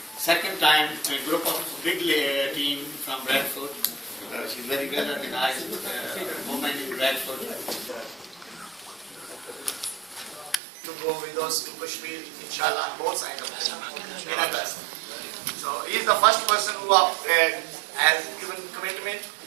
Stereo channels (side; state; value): left; drops out; at 10.6 s